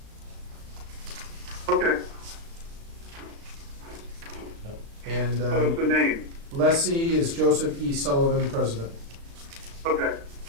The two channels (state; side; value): late; left; 36 ms